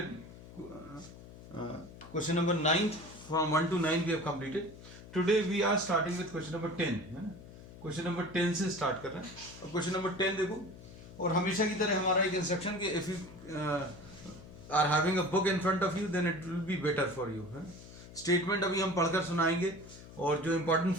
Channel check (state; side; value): noise; left; hum, 17 dB below the sound